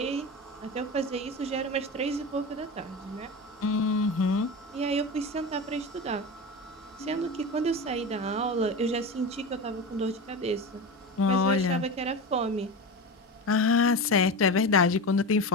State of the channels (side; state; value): both; normal; correlation 0.25